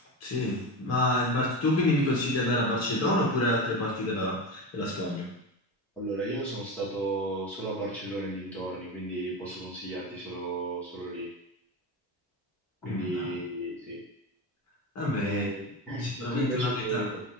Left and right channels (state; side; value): normal; both; correlation 0.22